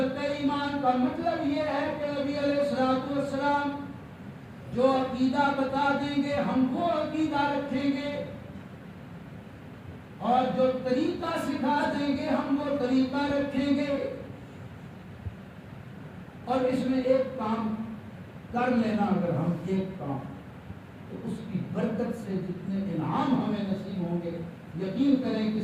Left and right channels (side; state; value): both; identical; correlation 1.00